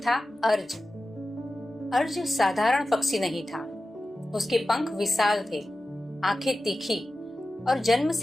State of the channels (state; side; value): normal; both; correlation 0.94